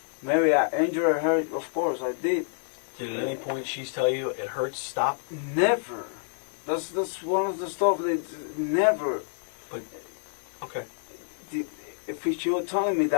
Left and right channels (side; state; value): right; silent; digital silence